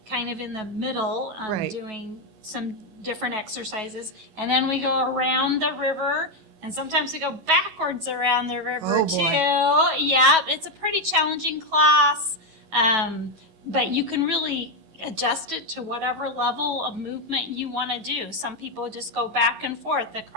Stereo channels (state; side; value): late; left; 11 ms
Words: of in the middle Right. doing some different exercises. And then we go around the river, and sometimes we go backwards around the river Oh, boy. too. Yeah, it's a pretty challenging class. But you can really adjust it to whatever level of movement you want to do. Some people just go back and forth